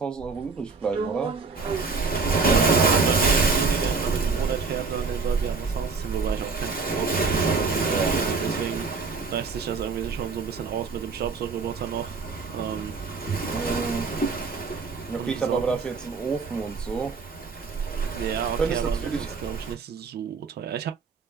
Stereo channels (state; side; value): quieter; left; 4.6 dB